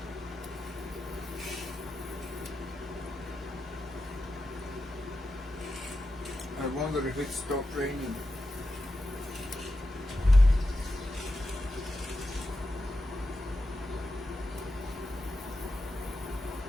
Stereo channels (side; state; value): both; normal; correlation 0.89